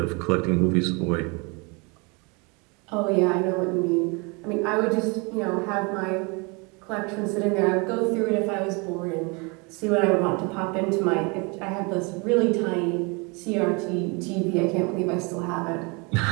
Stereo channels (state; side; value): quieter; left; 30.3 dB